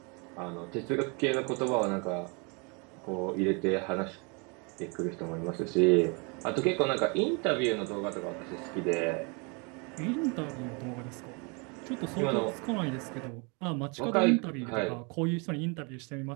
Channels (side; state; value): left; quieter; 32.3 dB